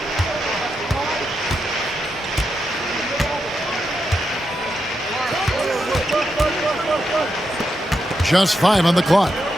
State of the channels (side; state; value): both; normal; correlation 0.85